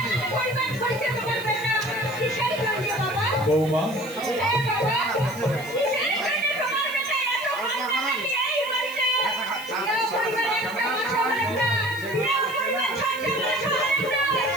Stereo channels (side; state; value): right; noise; hiss, 18 dB below the sound